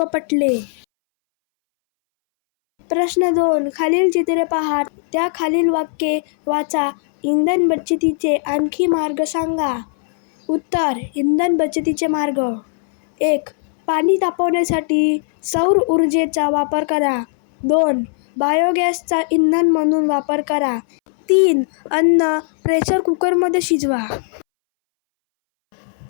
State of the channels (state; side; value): silent; right; 65 dB below the other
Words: पटले. प्रश्न 2. खालील चित्रे पहा, त्या खालील वाक्ये वाचा. इंधन बचतीचे आणखी मार्ग सांगा. उत्तर. इंधन बचतीचे मार्ग. 1. पाणी तापवण्यासाठी सौर ऊर्जेचा वापर करा. 2. बायोगॅसचा इंधन म्हणून वापर करा. 3. अन्न प्रेशर कुकरमध्ये शिजवा.